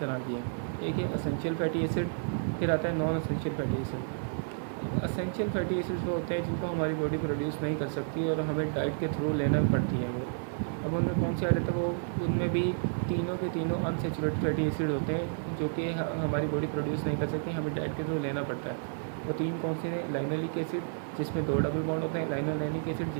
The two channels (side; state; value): left; silent; digital silence